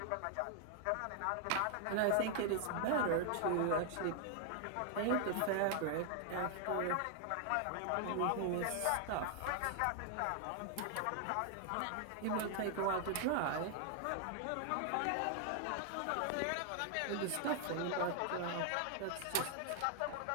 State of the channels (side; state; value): both; different; correlation 0.00